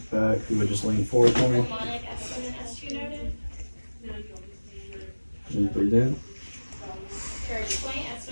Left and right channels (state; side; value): inverted; both; correlation -1.00